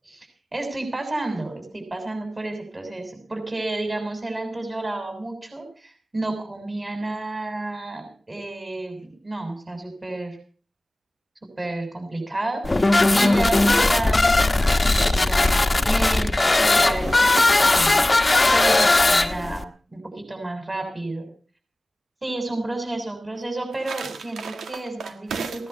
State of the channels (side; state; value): both; normal; correlation 0.97